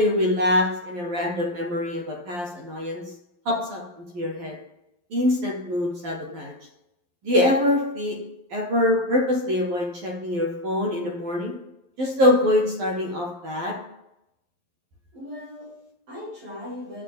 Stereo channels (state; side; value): late; left; 11 ms